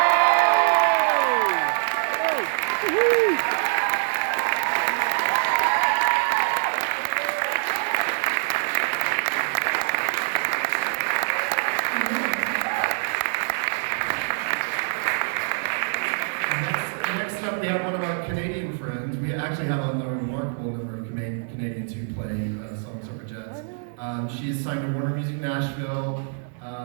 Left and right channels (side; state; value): left; silent; digital silence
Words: Next up, we have one of our Canadian friends. We actually have a remarkable number of Canadians who play Suffragettes. She's signed to Warner Music Nashville.